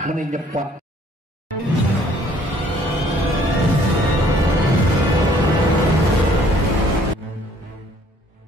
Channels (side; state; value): both; normal; correlation 0.60